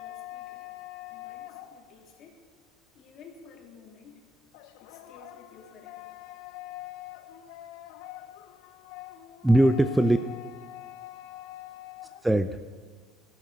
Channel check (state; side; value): normal; both; correlation 0.89